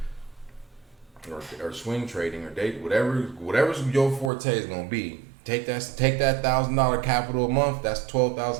or swing trading or date, whatever's your forte is gonna be. Take that $1,000 capital a month. That's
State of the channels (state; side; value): drops out; left; at 4.3 s